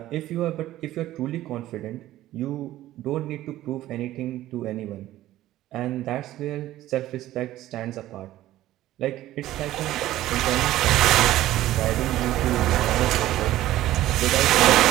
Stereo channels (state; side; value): quieter; left; 14.6 dB